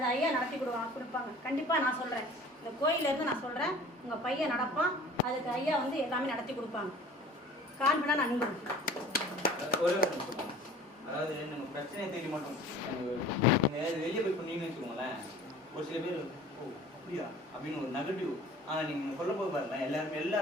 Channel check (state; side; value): normal; both; correlation 0.45